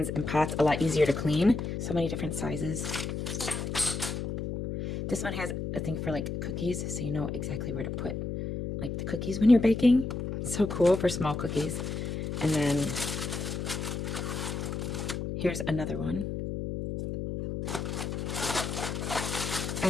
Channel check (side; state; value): left; noise; hum, 4 dB below the sound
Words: and pots a lot easier to clean. So many different sizes. This one has a thing for like cookies, so you know exactly where to put like the cookies when you're baking. So cool for small cookies. And then here's another one.